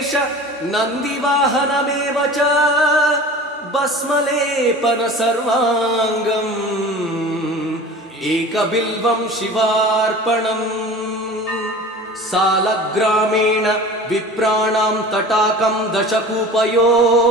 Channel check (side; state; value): both; normal; correlation 0.39